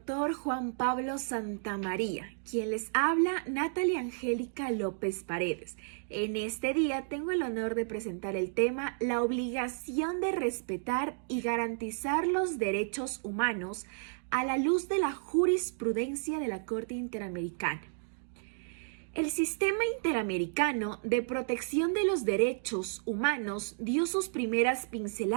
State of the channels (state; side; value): silent; left; digital silence